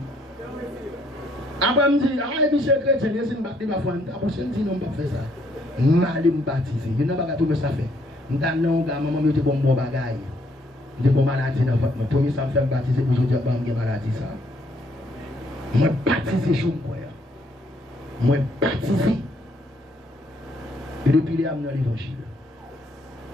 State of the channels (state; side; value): normal; both; correlation 0.68